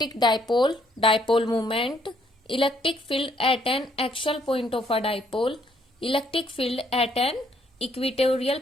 dipole, dipole movement, electric field at an axial point of a dipole, electric field at an equatorial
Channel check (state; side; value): normal; both; correlation 0.68